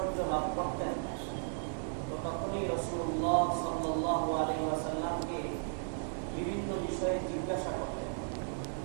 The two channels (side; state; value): left; silent; digital silence